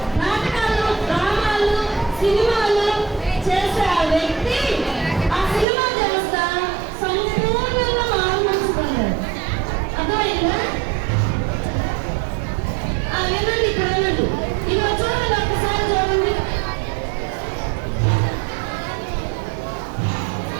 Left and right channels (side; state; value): left; drops out; at 5.7 s